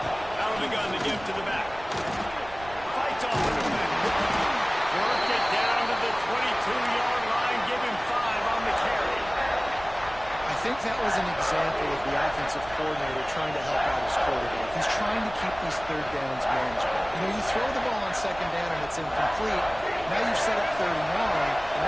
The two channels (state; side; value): noise; right; rumble, 17 dB below the sound